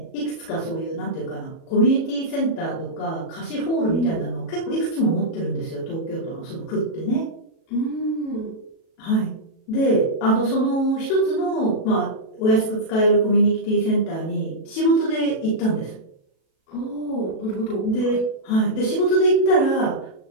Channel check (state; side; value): late; right; 37 ms